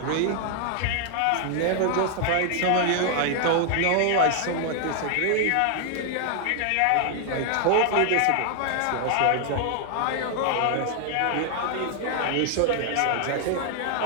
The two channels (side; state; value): both; different; correlation 0.00